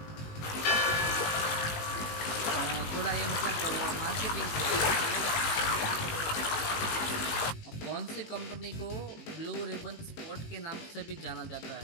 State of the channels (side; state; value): right; late; 19 ms